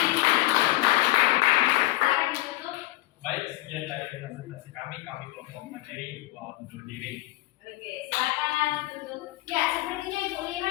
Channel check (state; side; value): quieter; right; 18.6 dB